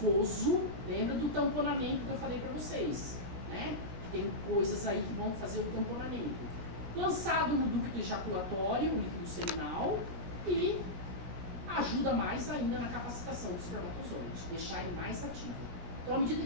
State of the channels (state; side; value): late; left; 17 ms